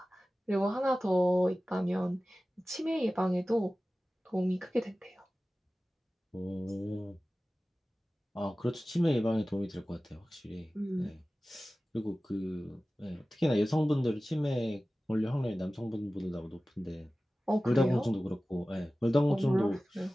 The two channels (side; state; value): both; normal; correlation 0.96